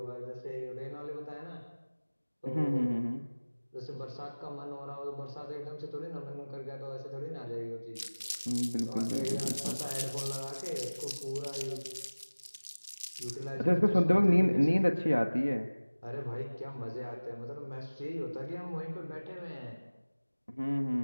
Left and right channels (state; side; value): inverted; both; correlation -1.00